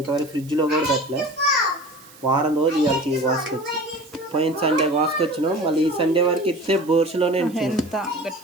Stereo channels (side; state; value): right; noise; hiss, 23 dB below the sound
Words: ఫ్రిడ్జ్లో కూడా పెట్టలే. వారం రోజు ఇవాళకి కోసుకొచ్చి, పోయిన సండే కోసుకొచ్చినాం. మళ్ళీ ఈ సండే వరకు ఇస్తే బోర్సులోనే ఎంత